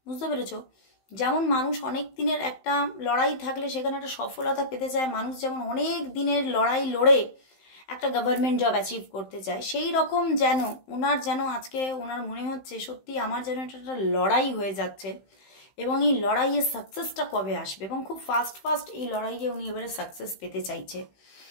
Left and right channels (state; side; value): late; right; 15 ms